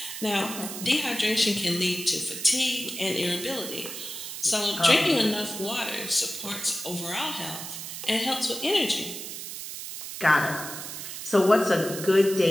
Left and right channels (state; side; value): noise; right; hiss, 8 dB below the sound